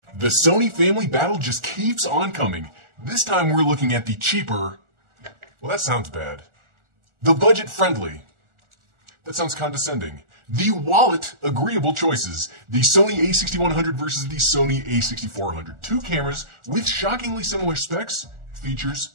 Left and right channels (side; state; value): left; late; 1.4 ms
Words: The Sony family battle just keeps on coming. This time we're looking at the cheaper, well, that sounds bad. The budget-friendly. That sounds condescending. The wallet-agreeable choices. The Sony a6100 versus the Sony a6400. Two cameras with shockingly similar specs, features,